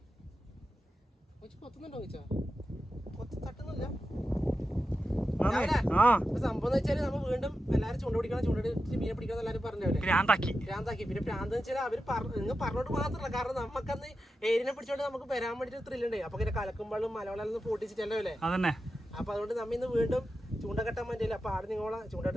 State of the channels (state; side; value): normal; both; correlation 0.91